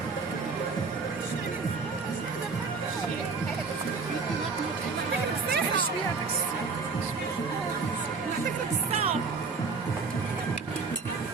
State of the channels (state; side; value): quieter; left; 4.6 dB